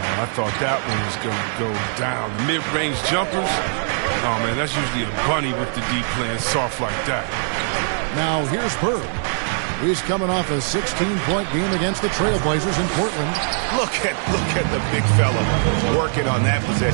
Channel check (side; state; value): left; silent; 65 dB below the other